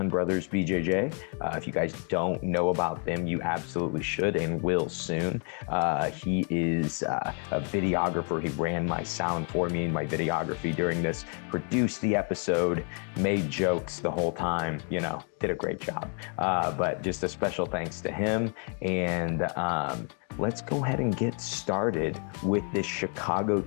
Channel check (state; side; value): quieter; right; 39.6 dB